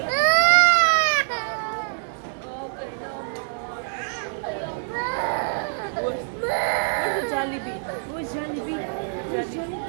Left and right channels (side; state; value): left; silent; digital silence